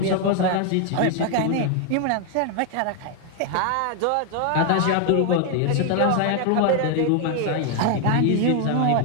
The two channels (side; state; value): both; different; correlation 0.00